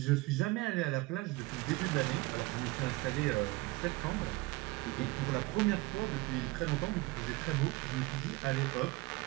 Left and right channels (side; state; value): left; quieter; 21.8 dB